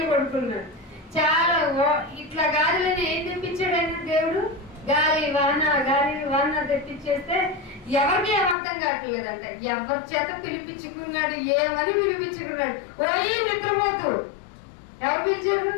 కొడుకున్నాడు. చాలా ఇట్లా గాలిని ఏం తెప్పించాడు ఆయన దేవుడు? గాలి వాన తెప్పించేస్తే ఎవరికి అర్థం కావట్లేదంటే ఎవరి చేత పిలిపించుకున్నాడు, ఏమని పిలిపించుకున్నాడు? ఓయి నిద్రపోతూ ఎవరు పిలిచారు?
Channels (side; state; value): right; drops out; at 8.6 s